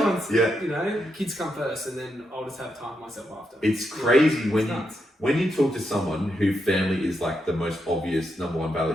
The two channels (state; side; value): normal; both; correlation 0.83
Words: you know, kids come first, and then I'll just have time for myself after. It's crazy when you talk to someone who family is like the most obvious number one